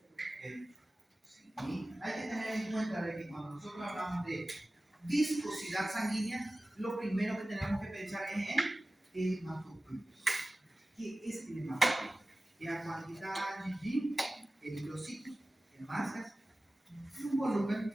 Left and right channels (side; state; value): both; normal; correlation 0.96